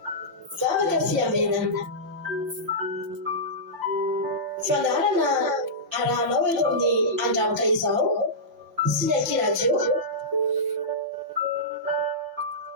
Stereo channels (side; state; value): left; late; 6.1 ms